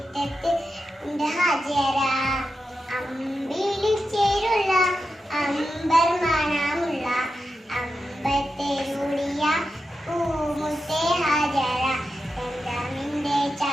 ഹാജര അമ്പിളിച്ചേരുള്ള അമ്പർമണമുള്ള അമ്പത്തേരുളിയ പൂമുത്തെ ഹാജര സംസാമിന്റെ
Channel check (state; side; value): normal; both; correlation 0.89